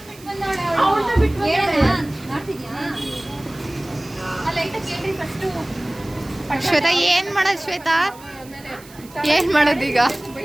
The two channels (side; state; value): right; noise; hiss, 22 dB below the sound